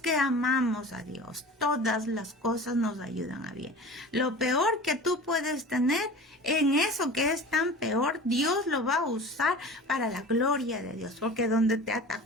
amamos a Dios, todas las cosas nos ayudan a bien. Lo peor que tú puedes tener, en eso que es tan peor, Dios lo va a usar para la gloria de Dios. Porque donde te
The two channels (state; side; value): normal; both; correlation 0.38